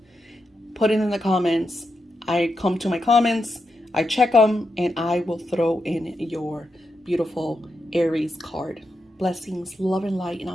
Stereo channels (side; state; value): both; normal; correlation 0.86